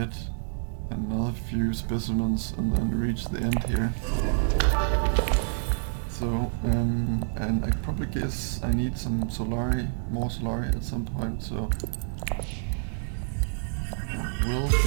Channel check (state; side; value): silent; left; 60 dB below the other